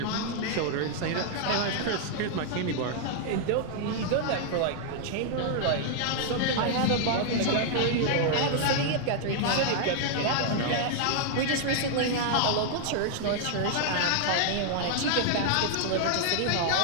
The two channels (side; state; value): both; different; correlation 0.00